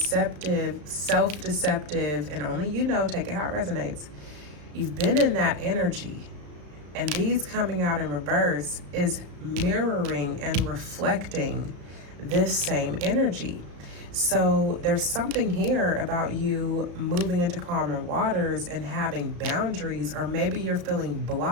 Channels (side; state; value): left; late; 34 ms